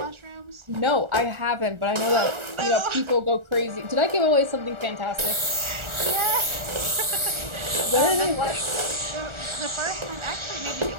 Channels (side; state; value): left; late; 1.4 ms